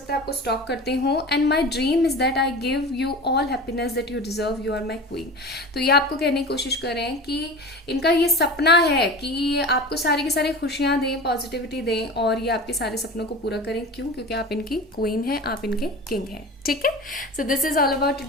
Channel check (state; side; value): normal; both; correlation 0.33